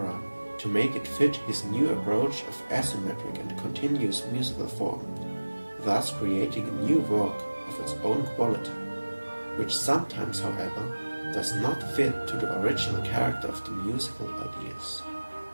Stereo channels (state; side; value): inverted; both; correlation -1.00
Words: to make it fit his new approach of asymmetric and continuous musical form, thus creating a new work of its own quality, which sometimes, however, does not fit to the original character of the musical ideas.